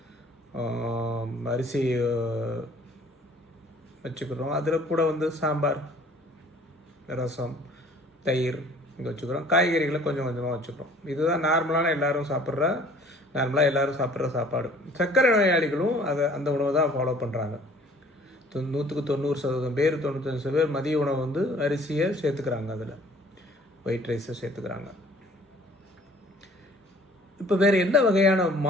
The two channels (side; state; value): both; normal; correlation 0.53